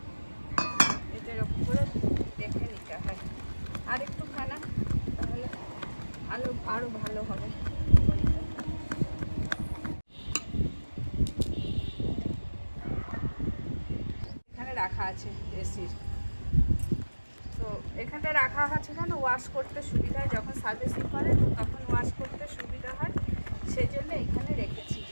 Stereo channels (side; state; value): both; inverted; correlation -1.00